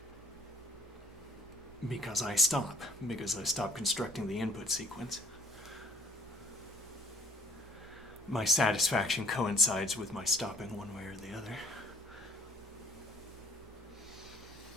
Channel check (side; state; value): both; normal; correlation 0.59